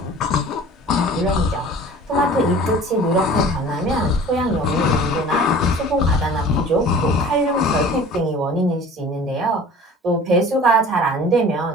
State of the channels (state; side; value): normal; both; correlation 0.44